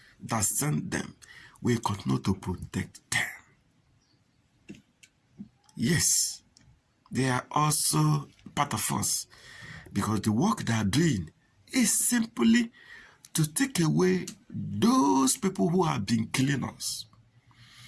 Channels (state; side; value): identical; both; correlation 1.00